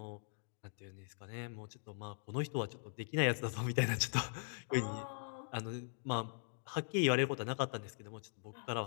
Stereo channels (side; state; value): right; silent; digital silence